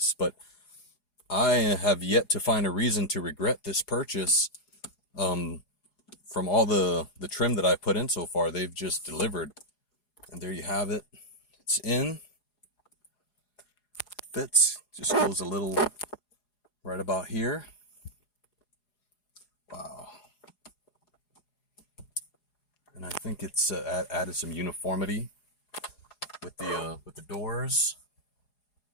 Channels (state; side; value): late; right; 4.8 ms